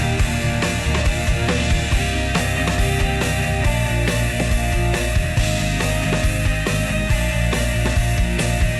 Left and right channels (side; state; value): both; identical; correlation 1.00